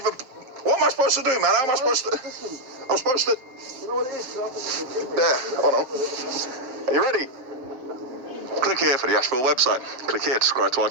What am I supposed to do, man? How am I supposed to... I'm supposed to... You know what it is? There, hold on. Are you ready? Click here for the Asheville website. Click here to subscribe to our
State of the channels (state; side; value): late; left; 7.1 ms